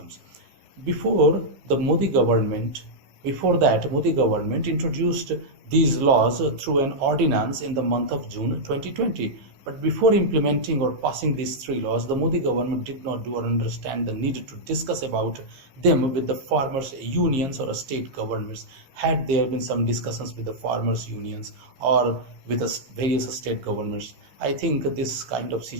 Before the Modi government, Before that, Modi government introduced these laws through an ordinance in the month of June 2020. But before implementing or passing these three laws, the Modi government did not do or understand the need to discuss about them with the farmers' unions or state governments. Had there been some discussions with the farmers' unions or with the various state governments, I think this kind of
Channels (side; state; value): left; late; 15 ms